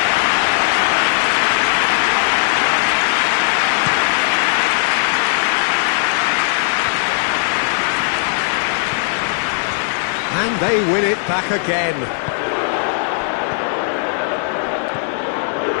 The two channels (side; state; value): right; silent; digital silence